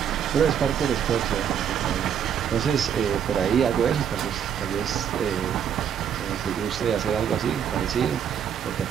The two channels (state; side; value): quieter; left; 8.5 dB